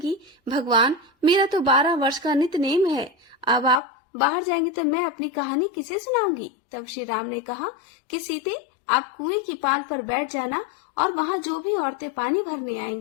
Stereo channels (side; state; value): right; drops out; at 3.8 s